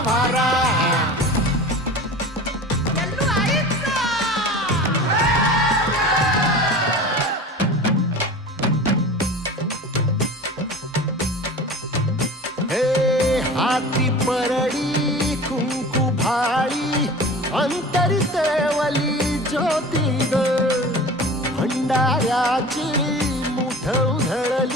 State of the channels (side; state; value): both; normal; correlation 0.37